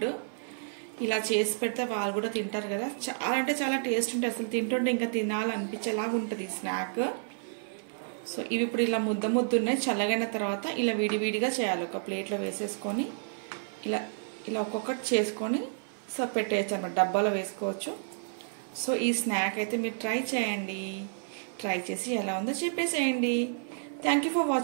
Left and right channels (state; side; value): silent; left; 58 dB below the other